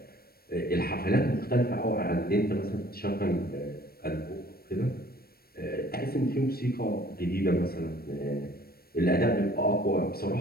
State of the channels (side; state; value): right; late; 0.44 ms